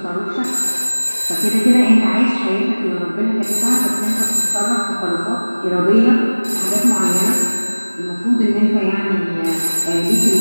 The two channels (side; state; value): both; inverted; correlation -1.00